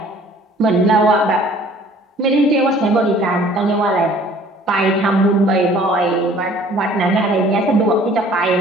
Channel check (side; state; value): both; normal; correlation 0.53